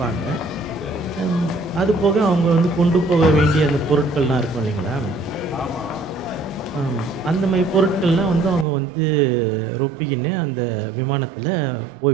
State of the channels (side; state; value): left; drops out; at 8.7 s